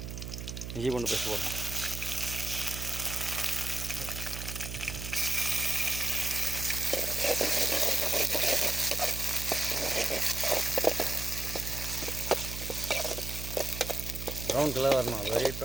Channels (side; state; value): right; noise; hum, 7 dB below the sound